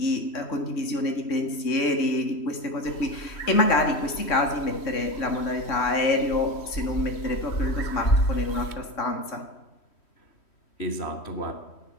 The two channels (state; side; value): late; right; 3.1 ms